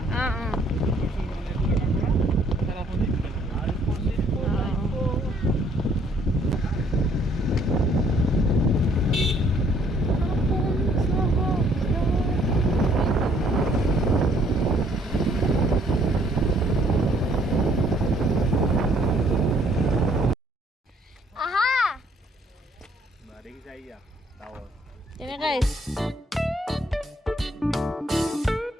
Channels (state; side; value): normal; both; correlation 0.64